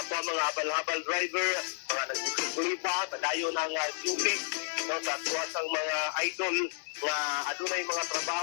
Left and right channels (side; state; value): right; silent; 57 dB below the other